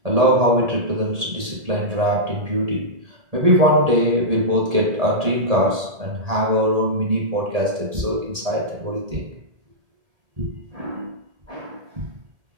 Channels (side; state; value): left; late; 1.8 ms